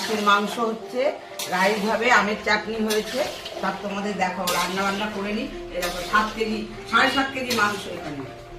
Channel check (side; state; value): both; identical; correlation 1.00